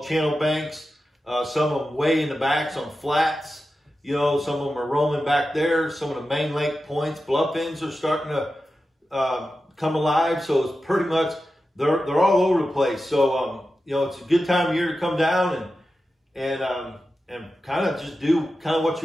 channel banks. Some of them way in the backs on flats. Some of them are roaming back there. Some of the main lake points, bluff ends are starting to come alive. So it's pretty much, they're all over the place. So, it's a good time of year to come down and kind of just do kind of what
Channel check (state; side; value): normal; both; correlation 0.92